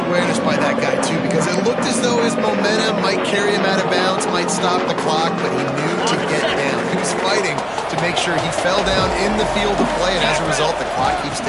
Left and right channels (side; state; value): both; identical; correlation 1.00